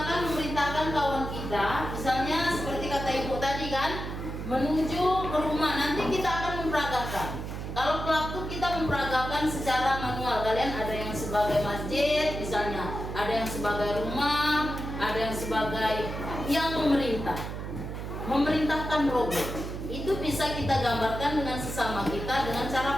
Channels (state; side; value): noise; right; hum, 6 dB below the sound